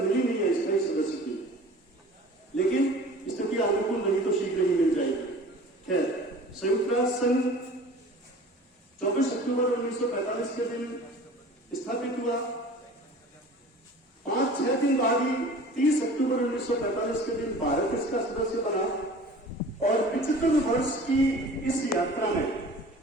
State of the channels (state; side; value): normal; both; correlation 0.43